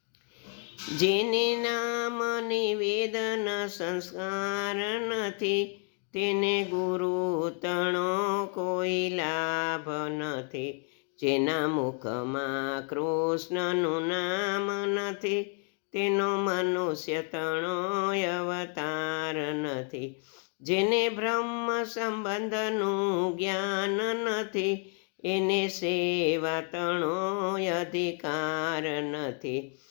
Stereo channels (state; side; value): quieter; right; 37.6 dB